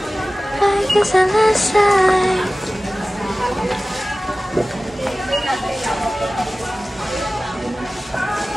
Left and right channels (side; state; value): both; normal; correlation 0.97